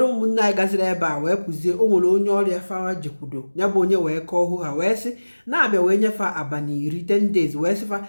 ụmụnne anyị gaziri ebe a wee pụzie o nwere onye ọrịa fa jekwudo ya bụ onye wee kọọ hụ ha wee sị na-abịa wee nyefe abalị 10 days wee sịfa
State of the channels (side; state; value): both; inverted; correlation -1.00